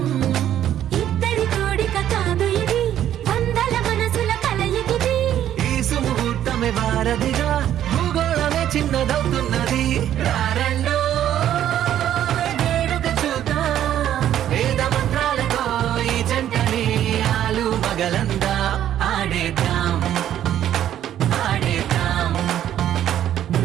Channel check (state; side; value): quieter; left; 11.2 dB